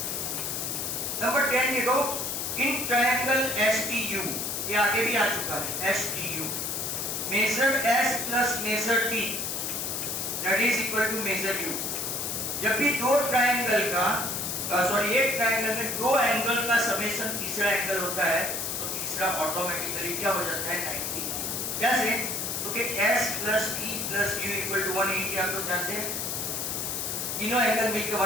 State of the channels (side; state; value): left; noise; hiss, 2 dB below the sound